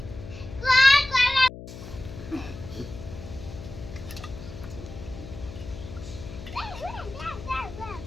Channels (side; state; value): left; noise; hum, 13 dB below the sound